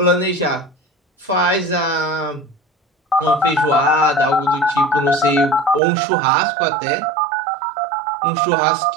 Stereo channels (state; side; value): drops out; left; at 5.8 s